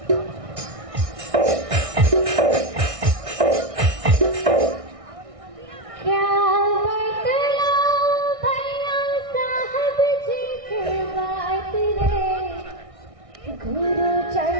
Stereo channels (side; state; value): left; late; 1.6 ms